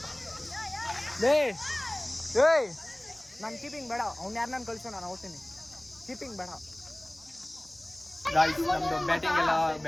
ನಾನು ಕೀಪಿಂಗ್ ಬೇಡ ಅವ್ನು ಯಾರು ನಾನು ಕಳಿಸೋ ನಾನು ಹೋಗ್ತೀನಿ ಕೀಪಿಂಗ್ ಬೇಡ ಗಾಯ್ಸ್ ನಮ್ದು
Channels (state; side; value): noise; right; hum, 28 dB below the sound